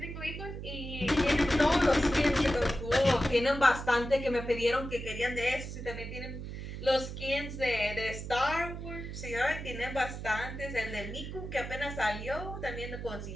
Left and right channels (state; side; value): noise; right; hum, 8 dB below the sound